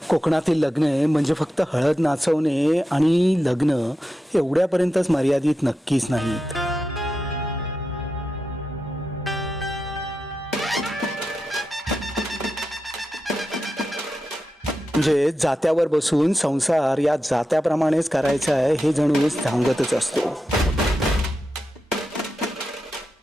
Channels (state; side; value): normal; both; correlation 0.89